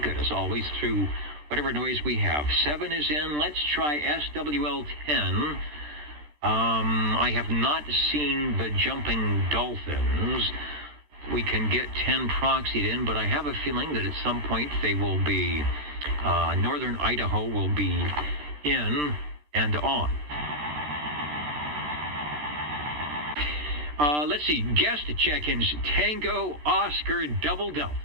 as always through whatever noise we have. 7 is in. Let's try SWL 10. I have not seen the Jumping Dolphins. We can get 10 proxied in, but I have a feeling that at some point they will be, northern Idaho will be in and on. Let's see, guest check-ins, Tango, Oscar, Double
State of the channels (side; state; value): left; late; 13 ms